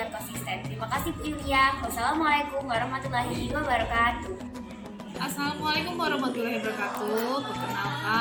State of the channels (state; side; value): identical; both; correlation 1.00